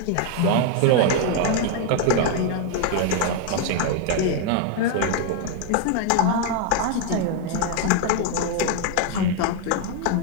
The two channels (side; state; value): both; different; correlation 0.00